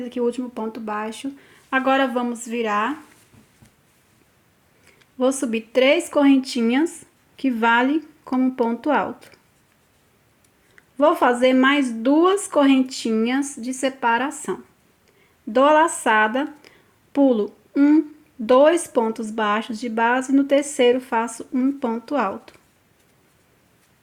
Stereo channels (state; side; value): identical; both; correlation 1.00